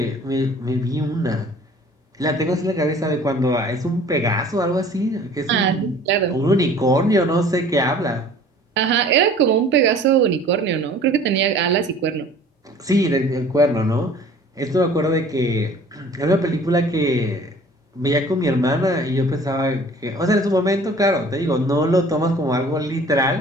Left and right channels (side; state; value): both; normal; correlation 0.49